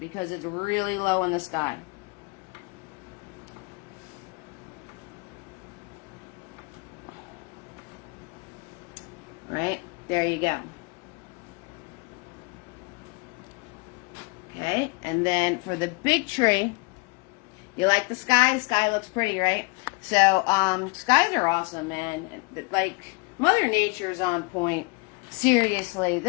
it's really low in the sky. Right? There you go. Okay, and then for the big tree, you like the sky? Sky looks pretty, right? So, skies are awesome, man. Like, Mother Nature's on point. Seriously,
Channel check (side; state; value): right; quieter; 29.8 dB